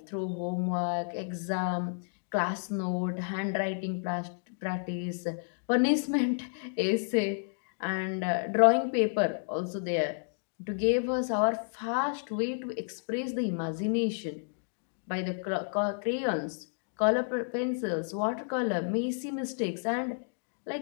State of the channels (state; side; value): silent; right; digital silence